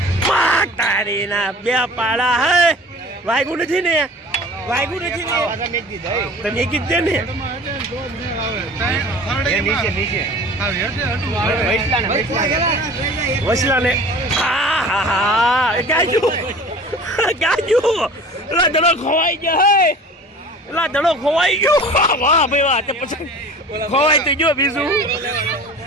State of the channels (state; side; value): normal; both; correlation 0.41